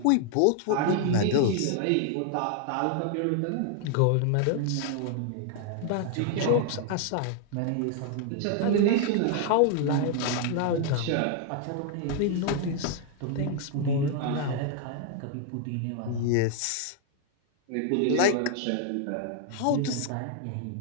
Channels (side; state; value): both; different; correlation 0.00